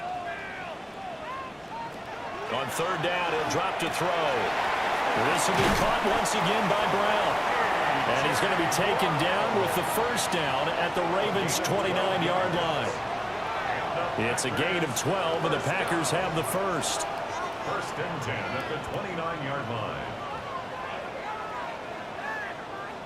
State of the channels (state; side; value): identical; both; correlation 1.00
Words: On third down, he'll drop to throw. This will be caught once again by Brown. And he's going to be taken down with the first down at the Ravens' 29-yard line. It's a gain of 12, and the Packers have the first. 1st and 10 at the 29-yard line.